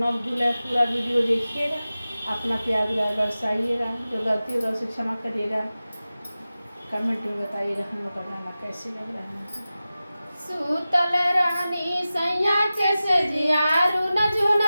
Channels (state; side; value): inverted; both; correlation -0.95